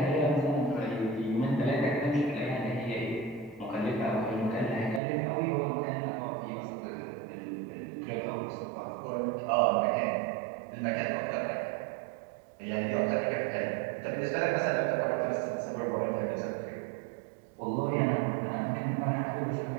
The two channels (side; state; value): left; drops out; at 5.0 s